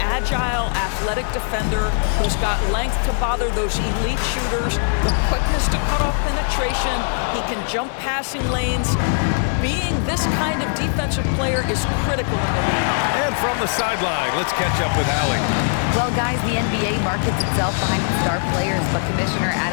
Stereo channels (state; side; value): silent; right; 65 dB below the other